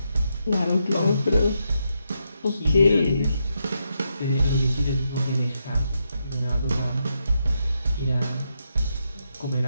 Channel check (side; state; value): both; inverted; correlation -0.82